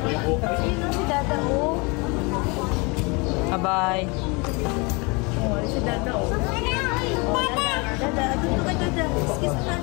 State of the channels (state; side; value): quieter; right; 28.6 dB